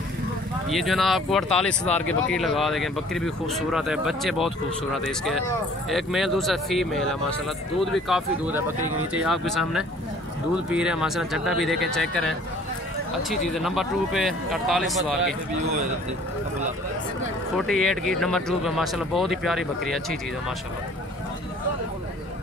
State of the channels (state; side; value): normal; both; correlation 0.53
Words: ये जो है ना आपको 48 हज़ार की बकरी लगा देंगे। बकरी भी खूबसूरत है, बच्चे बहुत खूबसूरत है इसके, एक मेल दूसरा फीमेल है माशाल्लाह। दूध भी काफ़ी दूध है बकरी के नीचे, आपके सामने दूध पी रहे हैं माशाल्लाह। चड्डा भी देखें, चेक करें, अच्छी चीज़ है। नंबर 2 पे 48 हज़ार की, 48 की नंबर 2 पे माशाल्लाह, बहुत ही प्यारी बकरी है, अच्छी चीज़ है माशाल्लाह।